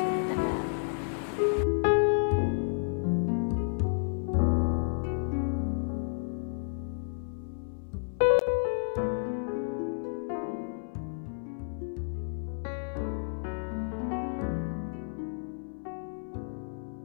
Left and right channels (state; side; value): silent; right; 57 dB below the other